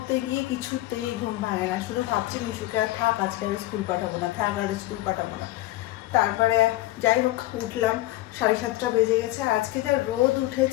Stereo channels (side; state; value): right; quieter; 17.0 dB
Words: গিয়ে কিছুতেই ঘুম ভাঙে না, শুধু ভাবছি মিশুকে আর থাক, আজকে আর স্কুল পাঠাবো না, থাক আর স্কুল পাঠাবো না। তারপরে যাই হোক উঠলাম, 7:30 বেজে গেছে। আজকে যে রোদ